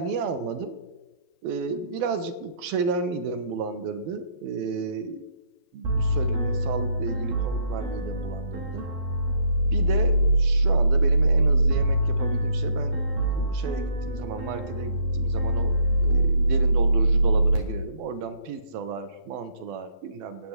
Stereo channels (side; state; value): left; late; 12 ms